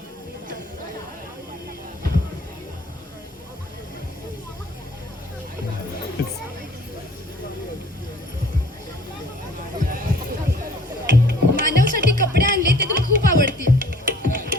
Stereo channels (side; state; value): both; normal; correlation 0.53